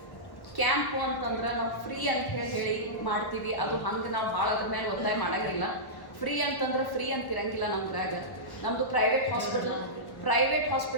ಕ್ಯಾಂಪು ಅಂತಂದ್ರೆ ನಾವು ಫ್ರೀ ಅಂತ ಹೇಳಿ ಮಾಡ್ತೀವಿ. ಅದು ಹಂಗೆ ನಾವು ಭಾಳ ಅದ್ರ ಮೇಲೆ ಒತ್ತಾಯ ಮಾಡೋಂಗಿಲ್ಲ. ಫ್ರೀ ಅಂತಂದ್ರೆ ಫ್ರೀ ಅಂತಿರಂಗಿಲ್ಲ. ನಮ್ದ್ರಾಗ ನಮ್ಮದು ಪ್ರೈವೇಟ್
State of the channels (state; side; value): late; right; 1.1 ms